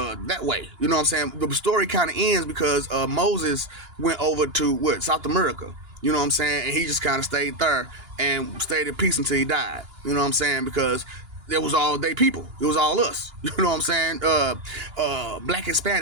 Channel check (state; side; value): late; left; 2.9 ms